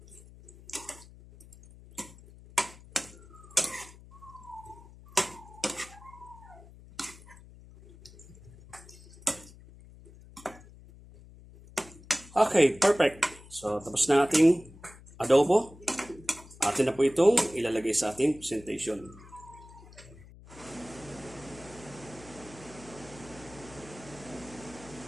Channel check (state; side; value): noise; left; hum, 20 dB below the sound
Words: Okay, perfect. So, tapos na ating adobo. Atin na po itong ilalagay sa ating presentation.